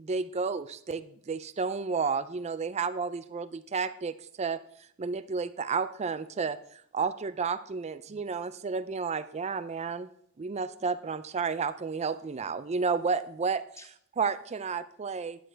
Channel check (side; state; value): left; quieter; 4.8 dB